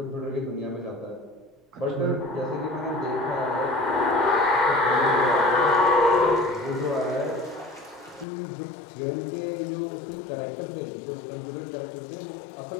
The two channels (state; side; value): drops out; right; at 8.2 s